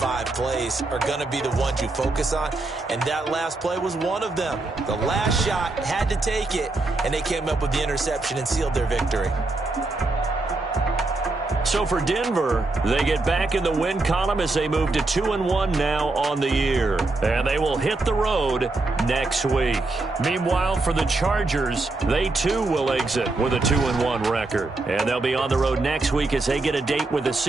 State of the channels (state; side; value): quieter; left; 3.2 dB